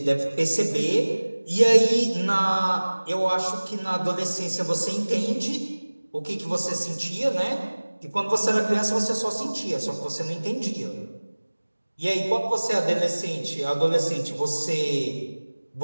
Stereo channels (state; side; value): inverted; both; correlation -1.00